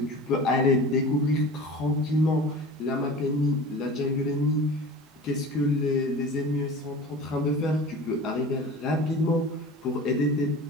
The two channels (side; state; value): both; normal; correlation 0.37